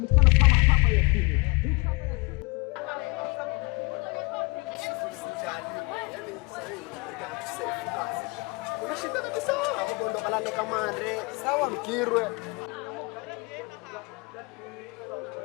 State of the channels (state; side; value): quieter; right; 27.6 dB